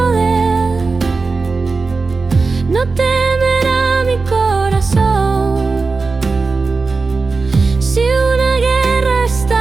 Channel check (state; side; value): quieter; left; 4.1 dB